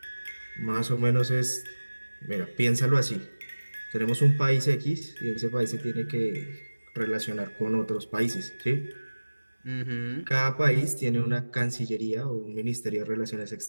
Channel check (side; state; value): both; inverted; correlation -1.00